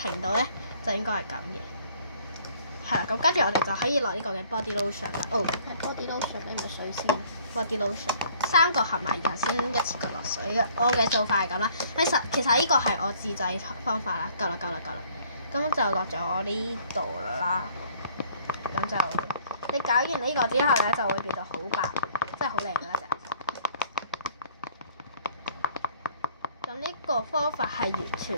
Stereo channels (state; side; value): inverted; both; correlation -0.59